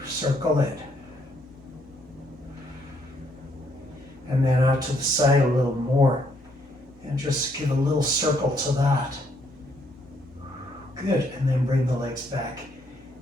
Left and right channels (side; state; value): both; normal; correlation 0.71